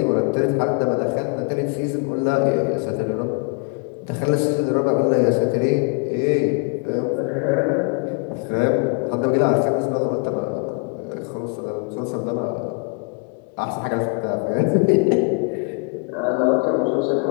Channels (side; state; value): right; quieter; 35.4 dB